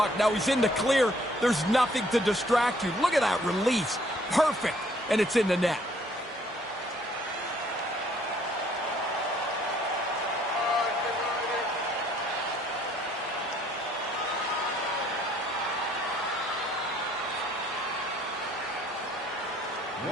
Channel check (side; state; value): both; normal; correlation 0.62